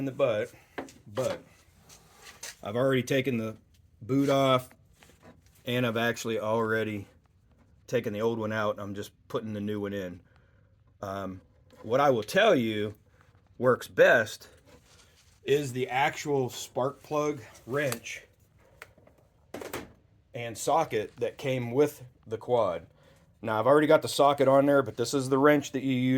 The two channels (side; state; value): both; identical; correlation 1.00